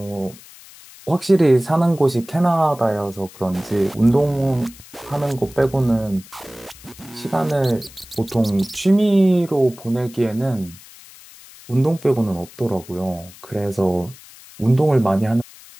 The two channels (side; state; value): left; noise; hiss, 21 dB below the sound